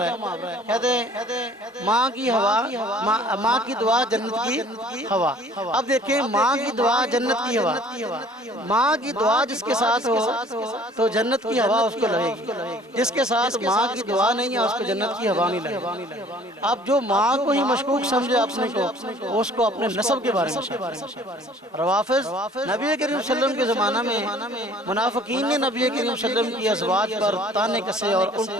ہے، کہتے ہیں ماں کی ہوا، ماں کی دعا جنت کی ہوا۔ اب دیکھیں ماں کی دعا جنت کی ہوا، ماں کی دعا جس کے ساتھ ہو تو جنت کی ہوا اس کو لگے گی، جس کے ساتھ ماں کی دعا نہیں ہے اس کو جنت کی ہوا نہیں لگے گی۔ اب جو ماں کو ہی مشکوک سمجھے اپنے کو، اس کو اپنے نسب کے بارے میں روافض، نبی کریم صلی اللہ علیہ وسلم کے زمانہ میں منافقین نے نبی کریم صلی اللہ علیہ وسلم کی ازواج پر تانے کسے اور ان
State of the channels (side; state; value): both; normal; correlation 0.53